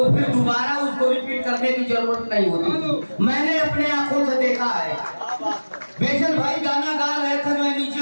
फिर दोबारा उसको रिपीट करने की जरूरत नहीं होती थी। मैंने अपने आंखों से देखा है। बेचन भाई गाना गा रहे थे, मैं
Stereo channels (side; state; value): both; inverted; correlation -1.00